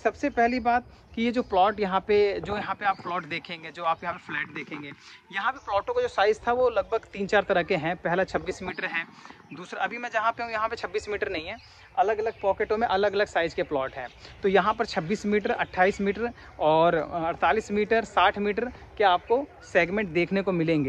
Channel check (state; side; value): identical; both; correlation 1.00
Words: पहली बात कि ये जो प्लॉट यहाँ पे आप प्लॉट देखेंगे, जो आप यहाँ पे फ्लैट देखेंगे, यहाँ पे प्लॉटों का जो साइज़ था वो लगभग 3-4 तरह के हैं। पहला 26 मीटर है, दूसरा अभी मैं जहाँ पे हूँ यहाँ पे 26 मीटर नहीं है, अलग अलग पॉकेटों में अलग अलग साइज़ के प्लॉट हैं। तो यहाँ पर 26 मीटर, 28 मीटर और 48 मीटर, 60 मीटर के आपको सेगमेंट देखने को